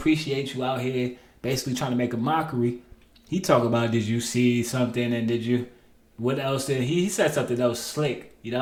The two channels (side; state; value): both; identical; correlation 1.00